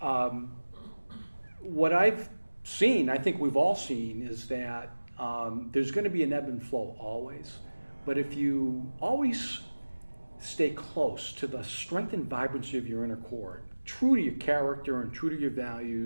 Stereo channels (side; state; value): both; inverted; correlation -1.00